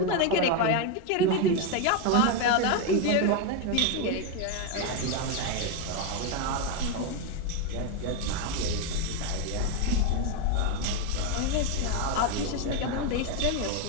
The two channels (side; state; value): both; different; correlation 0.02